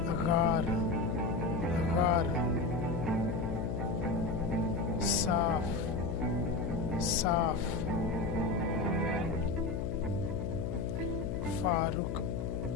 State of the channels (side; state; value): left; noise; hum, 3 dB below the sound